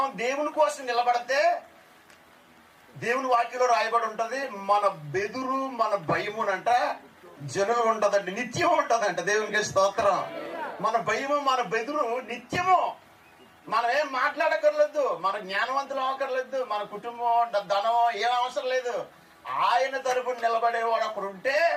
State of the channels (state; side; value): identical; both; correlation 1.00